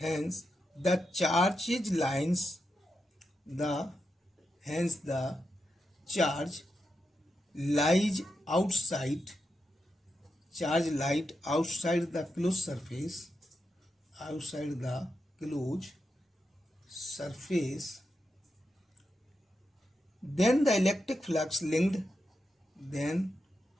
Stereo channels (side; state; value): both; normal; correlation 0.87